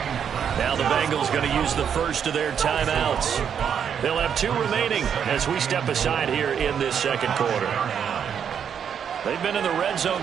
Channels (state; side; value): quieter; left; 7.9 dB